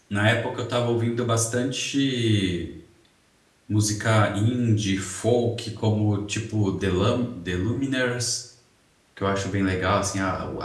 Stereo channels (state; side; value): identical; both; correlation 1.00